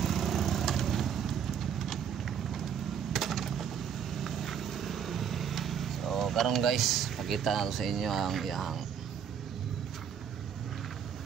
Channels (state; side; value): quieter; left; 8.1 dB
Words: So karon guys, pakita nato sa inyo ang iyang